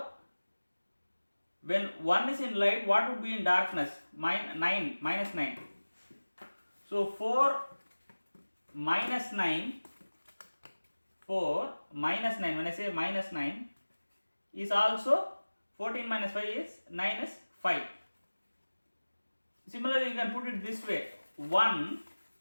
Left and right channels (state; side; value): inverted; both; correlation -1.00